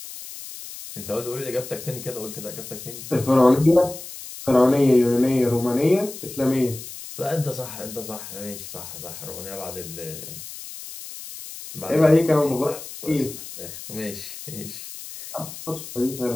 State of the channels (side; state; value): left; noise; hiss, 12 dB below the sound